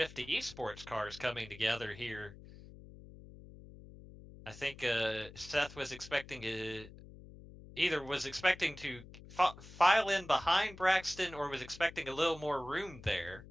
Esports cars coming together here. I think Seth was expecting to file in behind Braxton or was expecting a little more room there.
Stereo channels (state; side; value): noise; left; hum, 17 dB below the sound